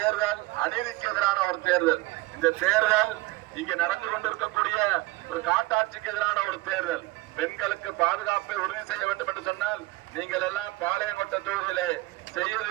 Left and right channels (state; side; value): quieter; left; 20.0 dB